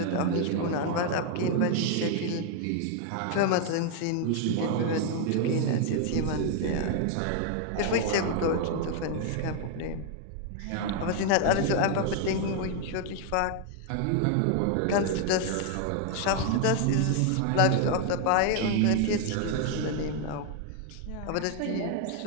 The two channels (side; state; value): both; different; correlation 0.00